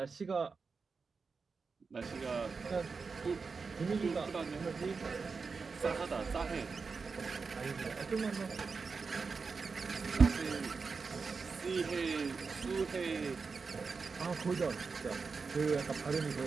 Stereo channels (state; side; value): quieter; left; 4.8 dB